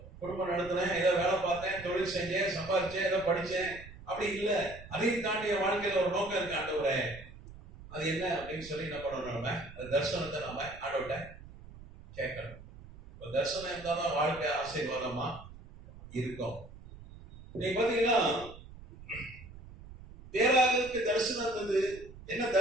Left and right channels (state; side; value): noise; right; rumble, 17 dB below the sound